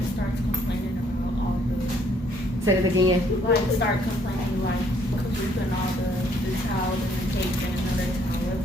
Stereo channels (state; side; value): normal; both; correlation 0.66